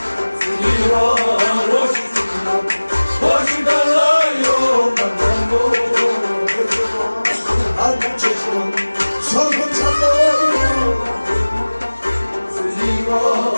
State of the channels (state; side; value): inverted; both; correlation -1.00